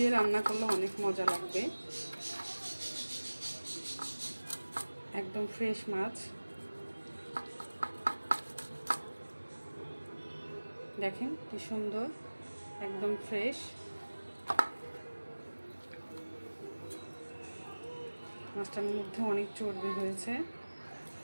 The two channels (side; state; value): both; inverted; correlation -1.00